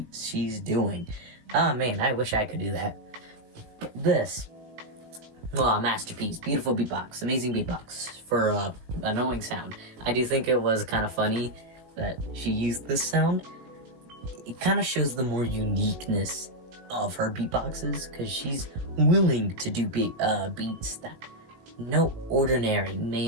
she's doing. Oh man, I wish I could do that. But this, masterpiece, beautiful beatbox, amazing beatbox for annoying sound. I do think it was kind of funny that she used this sound. It kind of shows the more uniqueness of her beatboxes, because she's willing to do beats that no ordinary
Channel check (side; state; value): left; late; 19 ms